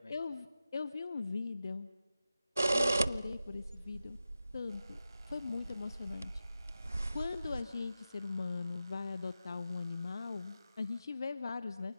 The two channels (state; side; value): inverted; both; correlation -0.92